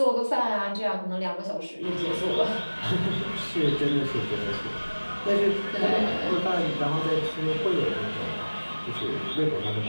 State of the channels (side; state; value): both; inverted; correlation -1.00